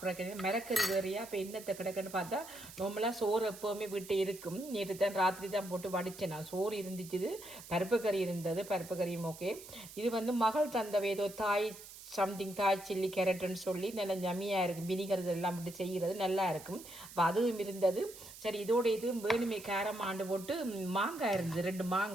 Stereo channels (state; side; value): noise; right; hiss, 16 dB below the sound